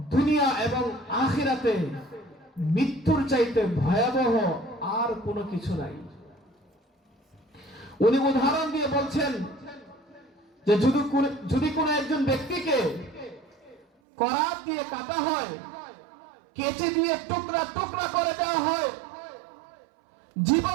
দুনিয়া এবং আখিরাতে মৃত্যুর চাইতে ভয়াবহ আর কোনো কিছু নাই। উনি উদাহরণ দিয়ে বলছেন যে যদি কোনো একজন ব্যক্তিকে করাত দিয়ে কাটা হয়, কেচে দিয়ে টুকরা টুকরা করে দেওয়া হয়,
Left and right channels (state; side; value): drops out; left; at 13.9 s